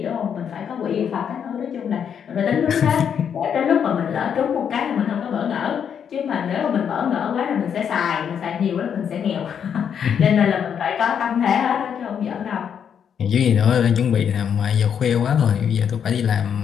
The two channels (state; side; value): quieter; right; 7.9 dB